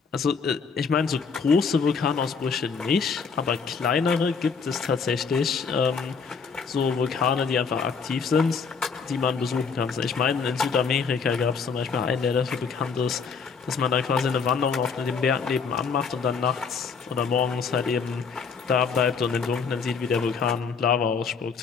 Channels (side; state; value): right; quieter; 5.5 dB